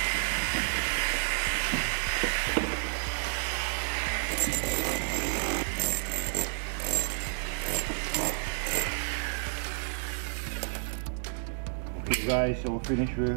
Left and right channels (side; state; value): left; silent; digital silence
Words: guys, so we're finished